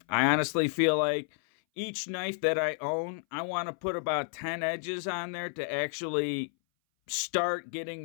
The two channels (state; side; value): silent; right; 57 dB below the other